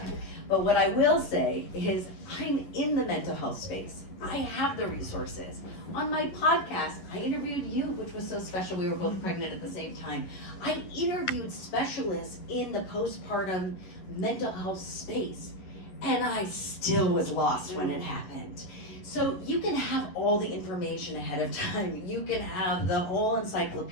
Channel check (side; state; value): right; late; 11 ms